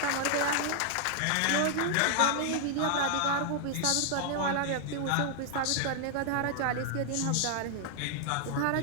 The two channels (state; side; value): different; both; correlation -0.01